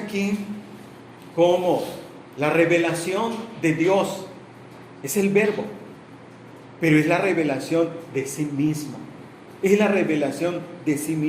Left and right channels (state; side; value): identical; both; correlation 1.00